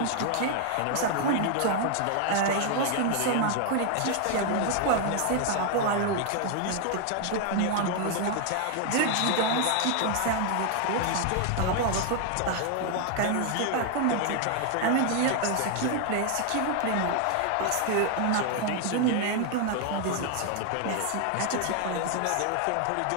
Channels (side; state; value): both; different; correlation 0.00